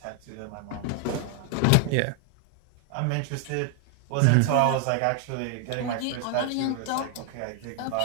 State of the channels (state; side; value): different; both; correlation 0.00